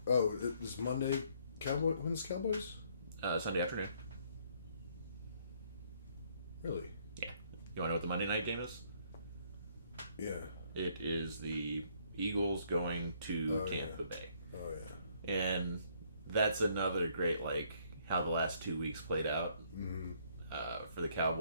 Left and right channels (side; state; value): both; inverted; correlation -0.66